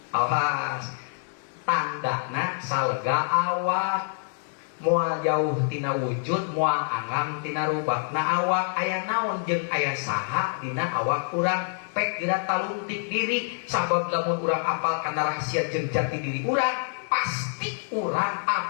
awas tandana salega awak, moal jauh tina wujud, moal angam tina rubakna awak. Aya naon jeung aya saha dina awak urang pek geura talungtik diri. Sabab lamun urang apal kana rahasia jeung jati diri urang, pasti urang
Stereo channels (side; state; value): right; silent; 61 dB below the other